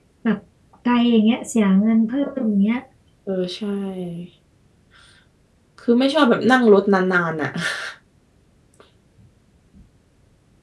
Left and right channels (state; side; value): identical; both; correlation 1.00